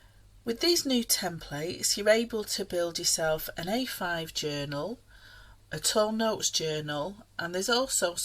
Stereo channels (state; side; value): identical; both; correlation 1.00